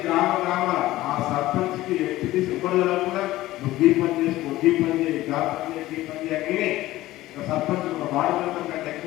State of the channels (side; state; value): right; quieter; 16.4 dB